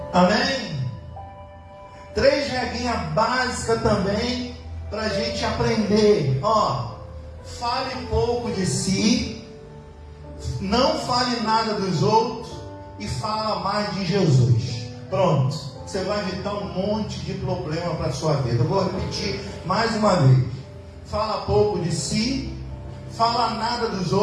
Amém? 3 regrinhas básicas também para a gente aprender. Fale pouco de si, não fale nada dos outros e fala mais de Jesus. Pronto, você vai evitar um monte de problema para a sua vida. Eu vou repetir mais uma vez: fala pouco de si, fala nada dos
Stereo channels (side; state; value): both; identical; correlation 1.00